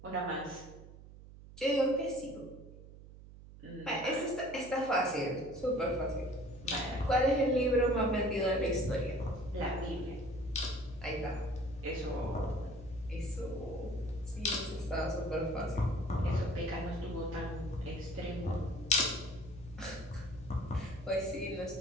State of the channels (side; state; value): right; noise; hum, 17 dB below the sound